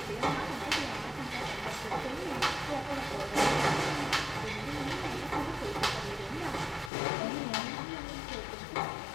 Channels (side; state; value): right; drops out; at 6.9 s